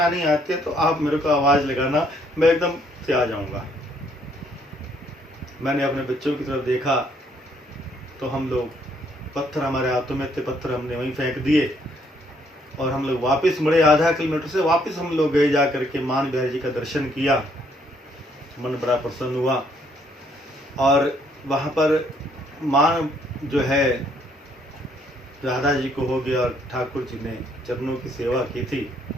आती है तो आप मेरे को आवाज़ लगाना, मैं एकदम से आ जाऊँगा। मैंने अपने बच्चों की तरफ देखा तो हम लोग, पत्थर हमारे हाथों में थे, पत्थर हमने वहीं फेंक दिए और हम लोग वापस मुड़े। आधा किलोमीटर से वापस हम लोग गए, जा करके मान बिहारी जी का दर्शन किया, मन बड़ा प्रसन्न हुआ। और वहाँ पर मान जो है राधा जी को हो गया और ठाकुर जी ने चरणों की सेवा की थी।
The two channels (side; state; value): both; normal; correlation 0.68